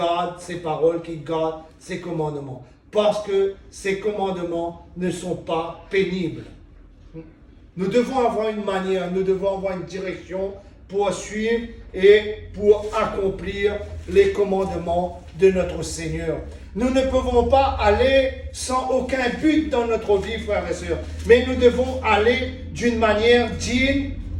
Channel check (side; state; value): both; identical; correlation 1.00